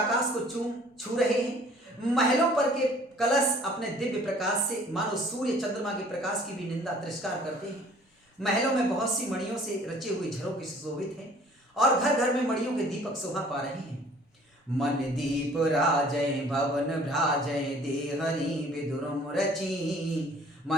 को छू रहे हैं। महलों पर के कलश अपने दिव्य प्रकाश से मानो सूर्य चंद्रमा के प्रकाश की भी निंदा तिरस्कार करते हैं। महलों में बहुत सी मणियों से रचे हुए झरोखे सुशोभित हैं और घर घर में मणियों के दीपक शोभा पा रहे हैं। मन दीप राजय भवन भ्राजय, देहरी विदुरम रची।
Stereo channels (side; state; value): both; normal; correlation 0.53